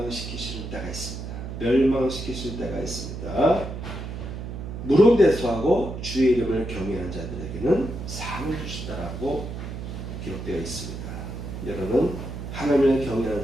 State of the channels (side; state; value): right; noise; hum, 8 dB below the sound